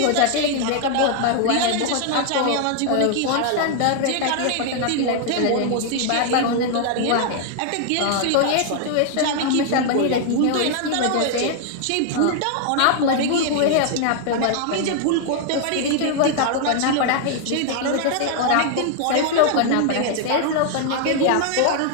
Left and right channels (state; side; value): different; both; correlation 0.00